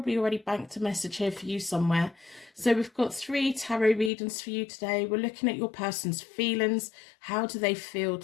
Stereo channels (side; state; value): right; drops out; at 4.1 s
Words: already banked a message here for you somewhere. So we've got 3 tarot readings for you today. We're looking at your person's feelings. How do they feel